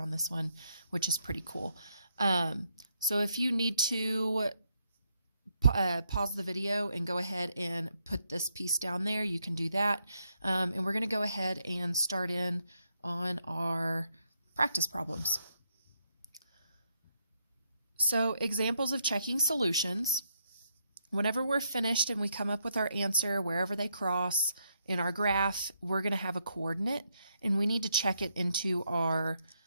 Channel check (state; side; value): inverted; both; correlation -0.77